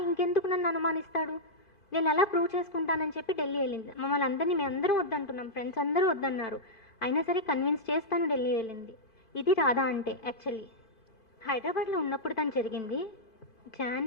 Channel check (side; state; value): right; late; 2.5 ms